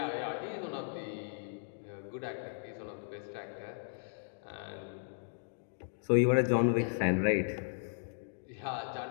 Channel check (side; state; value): right; silent; digital silence